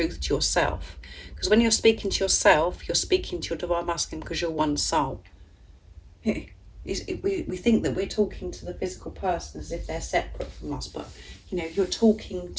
to yourself, because when you're speaking to yourself, you're speaking to your Divine Masculine, because you're one soul. We think that we're talking to the physical person as if they're separate from us, but you know, you're talking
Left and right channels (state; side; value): identical; both; correlation 1.00